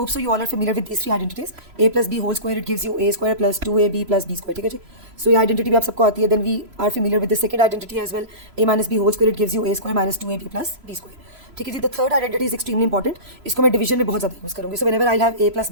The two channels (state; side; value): late; left; 3.0 ms